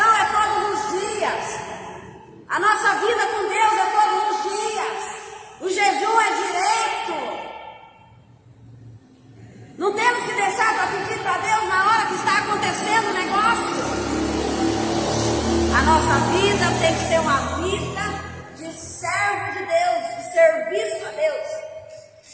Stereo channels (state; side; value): identical; both; correlation 1.00